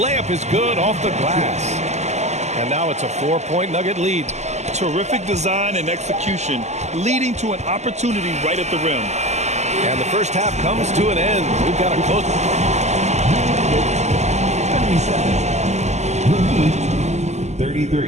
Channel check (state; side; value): late; left; 0.33 ms